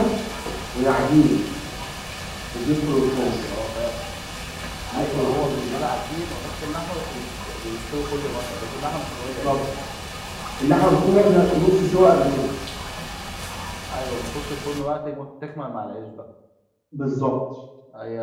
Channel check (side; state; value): both; identical; correlation 1.00